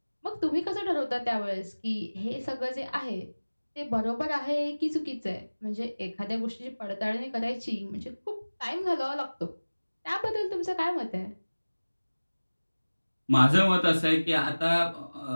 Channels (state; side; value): inverted; both; correlation -1.00